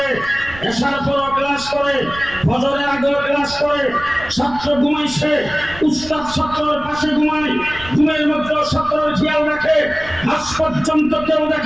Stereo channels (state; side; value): noise; right; rumble, 16 dB below the sound